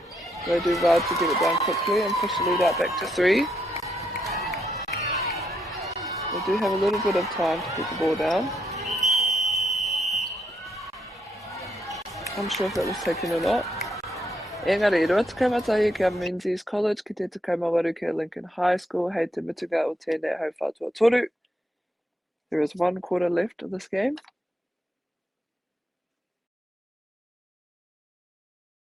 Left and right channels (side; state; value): both; normal; correlation 0.77